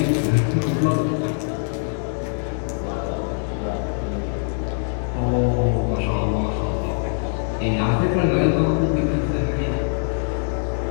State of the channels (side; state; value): right; silent; digital silence